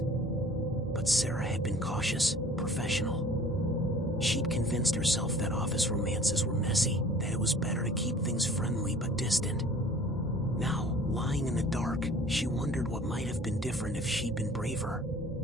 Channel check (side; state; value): both; normal; correlation 0.49